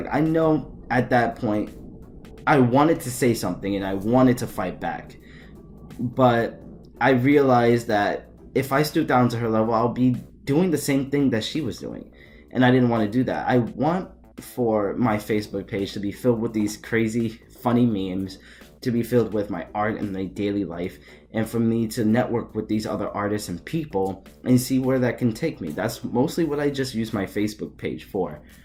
I know at that point, I wanted to say something and I wanted to fight back. But I realized that if I stoop down to her level, I'll be doing the same thing that she was doing. And I didn't want to do that. I want for my Facebook page to be filled with these crazy, funny memes, to be filled with my art and my daily life, and for me to network with these other artists and people and see where that can take me. That's mostly what I just use my Facebook page for.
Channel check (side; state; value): both; identical; correlation 1.00